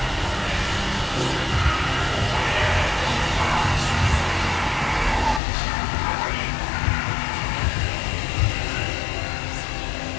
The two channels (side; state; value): right; drops out; at 5.4 s